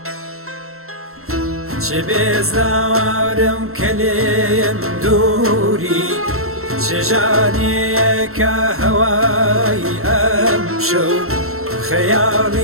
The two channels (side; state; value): left; late; 0.62 ms